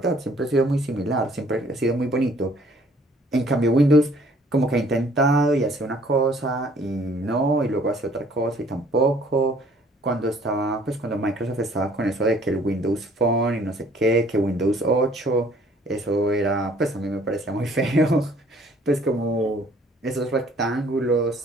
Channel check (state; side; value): normal; both; correlation 0.58